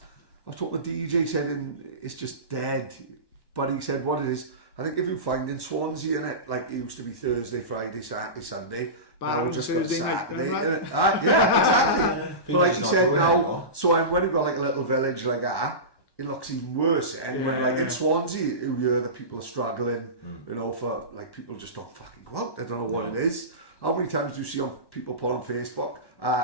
was talking to the DJ, said it's just dead. But he said what it is, I think if you find in Swansea in it, like it used to be Thursday, Friday, Saturday, Sunday, now we're just got a Saturday. Yeah, exactly. But like he said now, so when we've got like a little village like that, it looks even worse. And when like in Swansea, you hear that people are struggling, you know, for like people just don't fucking go out. They don't know what it is. How many times do you see people put on Facebook,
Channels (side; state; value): right; late; 1.1 ms